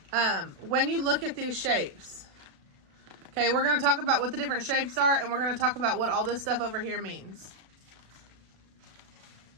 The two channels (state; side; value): late; left; 36 ms